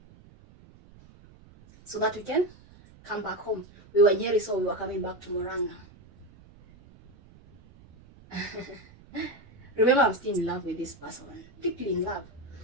so that we can come back home. We were in Nyeri, so we were coming back to Murang'a. Remember, I'm still in love with this person, deeply in love.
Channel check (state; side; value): noise; right; rumble, 24 dB below the sound